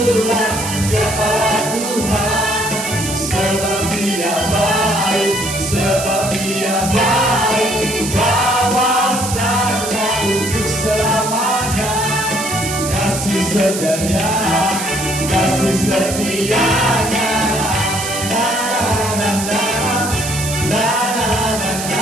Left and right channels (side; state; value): right; noise; hiss, 6 dB below the sound